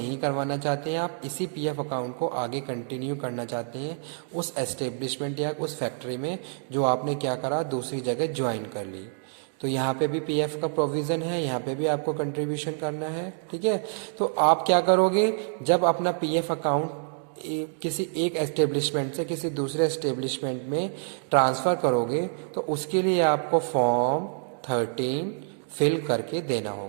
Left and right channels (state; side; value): silent; left; digital silence